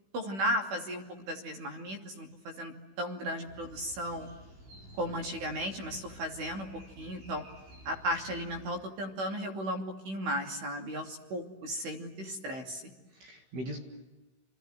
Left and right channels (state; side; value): late; left; 16 ms